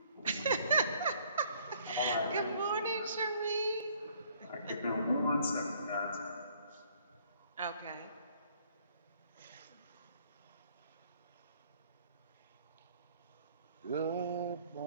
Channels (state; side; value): inverted; both; correlation -0.62